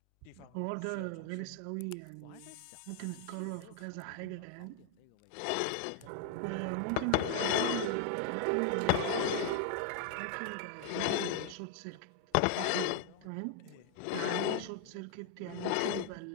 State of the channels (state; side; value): different; both; correlation 0.00